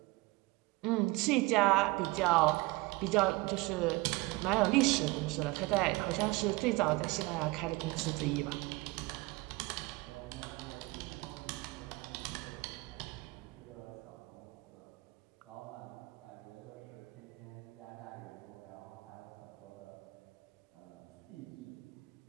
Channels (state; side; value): quieter; left; 22.7 dB